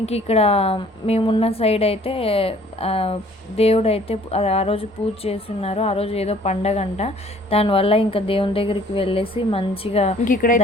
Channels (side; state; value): both; normal; correlation 0.55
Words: ఇక్కడ మేమున్న సైడ్ అయితే దేవుడు అయితే ఆ రోజు పూజ చేస్తున్నారు. ఆ రోజు ఏదో పండగ అంట. దానివల్ల ఇంకా దేవుని దగ్గరికి వెళ్ళేసి మంచిగా ఇక్కడ